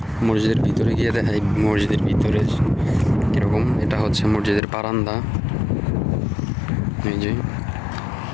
মসজিদের ভিতরে গিয়ে দেখাই মসজিদের ভিতরে কিরকম। এটা হচ্ছে মসজিদের বারান্দা। এই যে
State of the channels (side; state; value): right; drops out; at 4.6 s